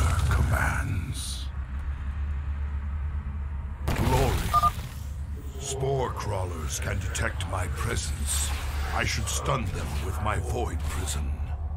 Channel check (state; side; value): identical; both; correlation 1.00